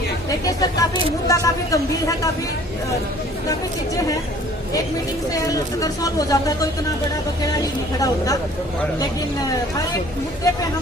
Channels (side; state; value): both; normal; correlation 0.53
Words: देखिए सर काफी मुद्दा काफी गंभीर है, काफी चीजें हैं। एक मीटिंग से अगर सॉल्व हो जाता है तो इतना बड़ा बकेड़ा ही नहीं खड़ा होता, लेकिन हर एक मुद्दे पे